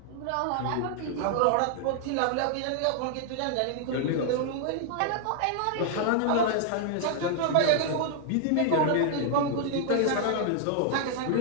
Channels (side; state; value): both; different; correlation 0.00